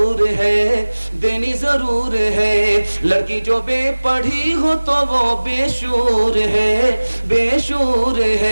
है, देनी जरूर है। लड़की जो बेपढ़ी हो तो वो बेशूर है, बेशूर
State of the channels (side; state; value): both; inverted; correlation -1.00